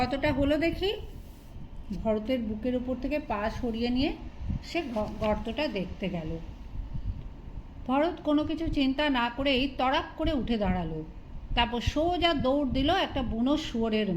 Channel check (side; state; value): both; identical; correlation 1.00